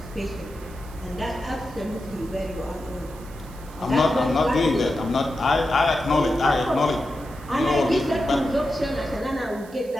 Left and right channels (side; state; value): right; noise; hiss, 23 dB below the sound